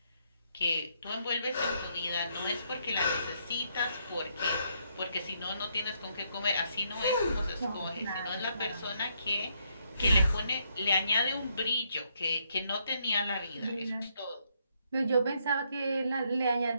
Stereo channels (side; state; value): both; inverted; correlation -0.74